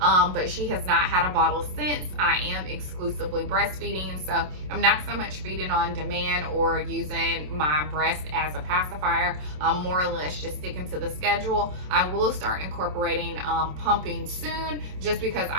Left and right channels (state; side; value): late; left; 27 ms